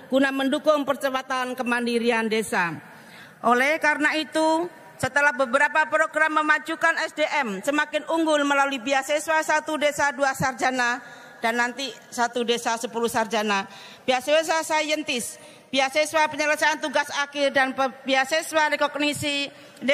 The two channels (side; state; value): both; identical; correlation 1.00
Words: guna mendukung percepatan kemandirian desa. Oleh karena itu, setelah beberapa program memajukan SDM semakin unggul melalui beasiswa 1 desa 2 sarjana dan nanti 1 desa 10 sarjana, beasiswa saintis, beasiswa penyelesaian tugas akhir dan beasiswa rekognisi